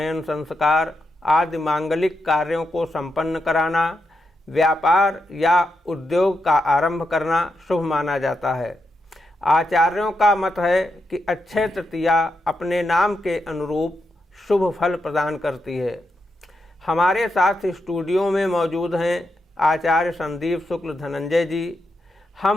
संस्कार आदि मांगलिक कार्यों को संपन्न कराना, व्यापार या उद्योग का आरंभ करना शुभ माना जाता है। आचार्यों का मत है कि अक्षय तृतीया अपने नाम के अनुरूप शुभ फल प्रदान करती है। हमारे साथ स्टूडियो में मौजूद हैं आचार्य संदीप शुक्ल धनंजय जी।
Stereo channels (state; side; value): normal; both; correlation 0.84